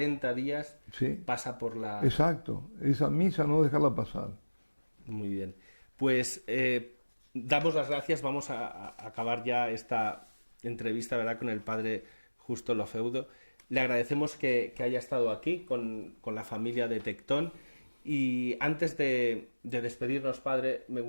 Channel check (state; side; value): inverted; both; correlation -1.00